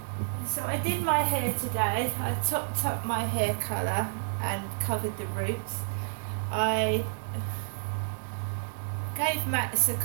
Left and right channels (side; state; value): left; silent; digital silence